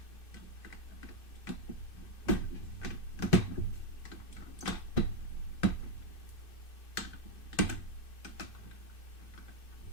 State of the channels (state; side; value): late; right; 2.6 ms